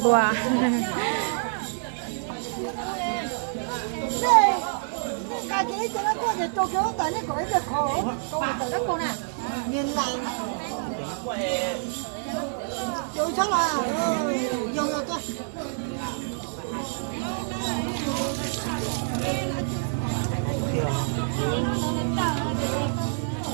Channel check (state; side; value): silent; left; 60 dB below the other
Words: bùa cái gì cho nó có thể cho cái tại nó gọi là khổ tại nó con nè nhìn lại tôi chắc là dùng rồi tôi